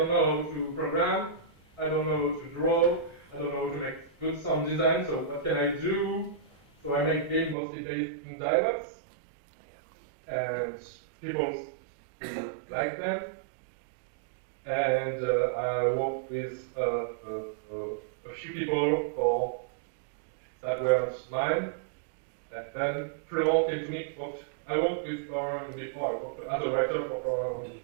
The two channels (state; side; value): drops out; left; at 7.6 s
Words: know how to program, I don't know how to draw, I don't know how to make good sound design, so what can I do? So I make games mostly based in dialogues, and people like them. And I worked with a few people that weren't mine. And then Florent came to me. I worked with our as a writer for Fourneau